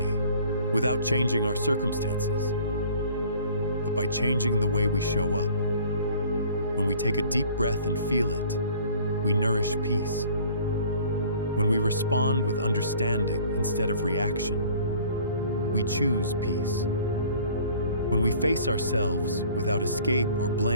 without changing our circumstances, but by changing the way we show up. When we take a deep breath and feel it, we nourish peace. When we respond with understanding instead of reaction, we choose peace. When we face ourselves without escape or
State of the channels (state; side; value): inverted; both; correlation -0.51